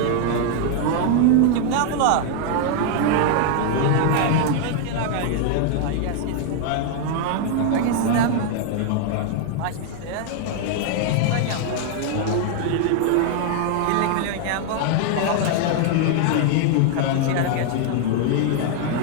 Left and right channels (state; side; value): different; both; correlation 0.00